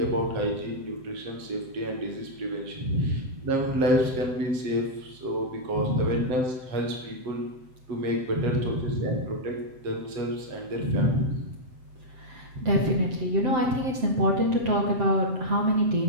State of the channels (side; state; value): left; late; 7.8 ms